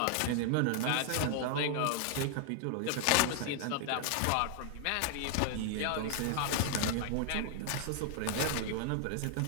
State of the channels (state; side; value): different; both; correlation 0.00